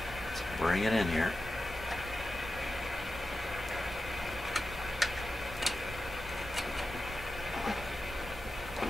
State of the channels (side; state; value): both; normal; correlation 0.92